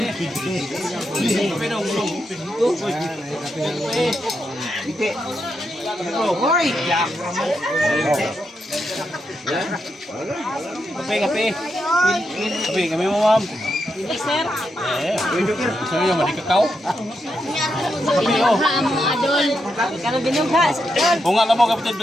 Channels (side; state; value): both; normal; correlation 0.84